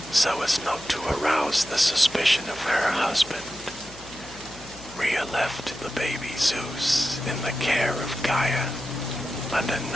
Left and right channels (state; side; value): noise; left; hum, 20 dB below the sound